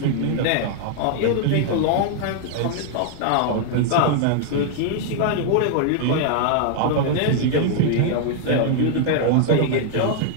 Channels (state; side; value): different; both; correlation 0.00